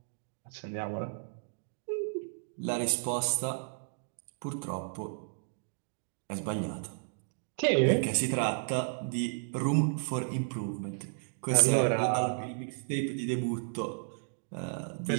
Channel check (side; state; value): left; silent; digital silence